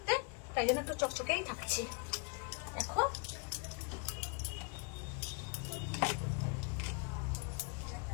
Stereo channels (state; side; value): quieter; right; 32.7 dB